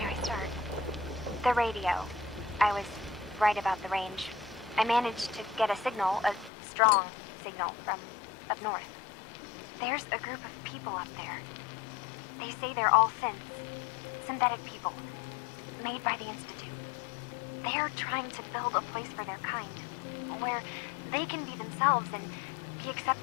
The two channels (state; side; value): drops out; right; at 6.5 s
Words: I start? The radio. I was right about the range. I managed to get a signal, a strong signal, from up north. There's a group of people up there. They say they're all synths. Synthetic people. Made by the Institute. They're trying to build a place for their kind. Where they can be themselves and be